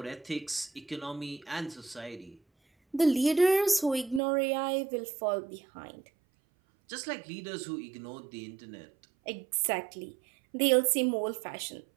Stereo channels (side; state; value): left; drops out; at 4.2 s